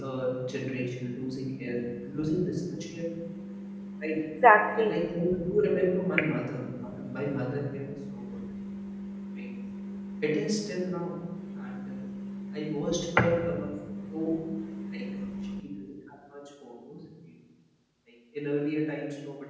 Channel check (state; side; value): identical; both; correlation 1.00